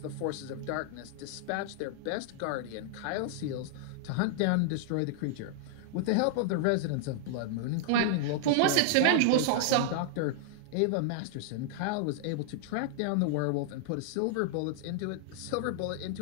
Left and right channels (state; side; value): different; both; correlation -0.01